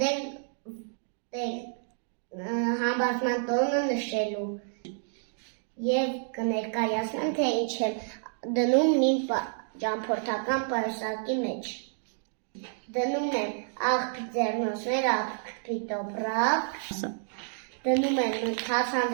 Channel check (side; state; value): left; silent; digital silence